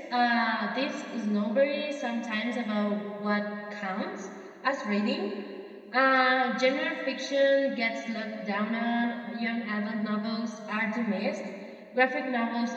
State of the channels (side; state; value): both; identical; correlation 1.00